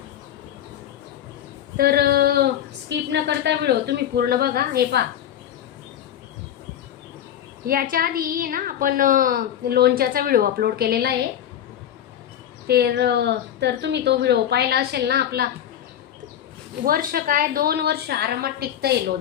तर स्किप न करता व्हिडिओ तुम्ही पूर्ण बघा. हे पहा, याच्या आधी ना आपण लोणच्याचा व्हिडिओ अपलोड केलेला आहे. तर तुम्ही तो व्हिडिओ पाहिला असेल ना. आपला वर्ष काय 2 वर्ष आरामात टिकतंय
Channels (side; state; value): right; quieter; 10.5 dB